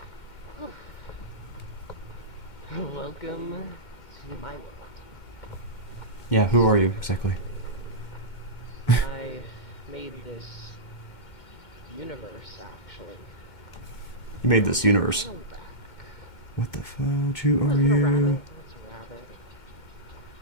Welcome to my world. Yeah, who are you exactly? I made this universe, actually. You made this universe. A little back. What the fudge? Who are Is that a rabbit? you? That's a rabbit.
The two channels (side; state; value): right; late; 2.1 ms